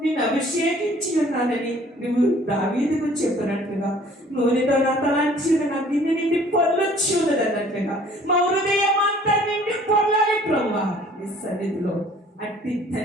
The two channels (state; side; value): normal; both; correlation 0.54